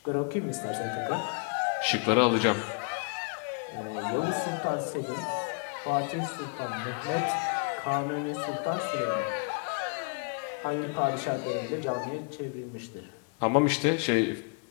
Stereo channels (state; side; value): quieter; right; 36.5 dB